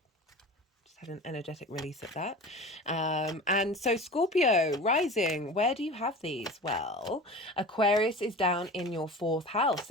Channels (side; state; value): both; normal; correlation 0.35